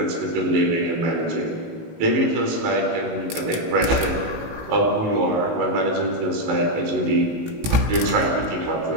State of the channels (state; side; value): late; left; 18 ms